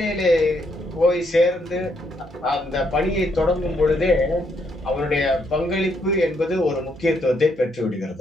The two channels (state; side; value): normal; both; correlation 0.74